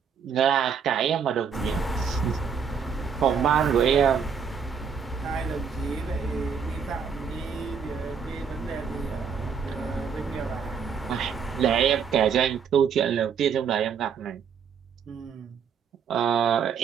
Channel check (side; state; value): left; quieter; 6.7 dB